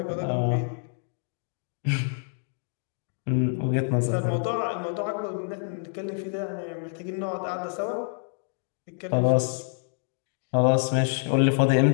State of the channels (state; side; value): silent; right; 60 dB below the other